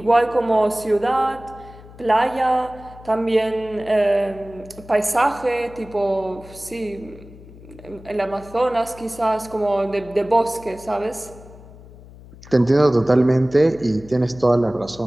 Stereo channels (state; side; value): noise; left; hum, 20 dB below the sound